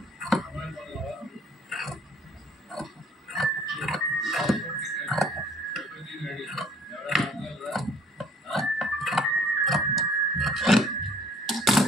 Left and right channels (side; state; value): both; normal; correlation 0.56